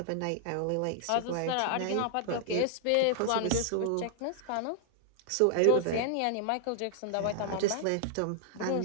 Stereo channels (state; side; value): different; both; correlation -0.01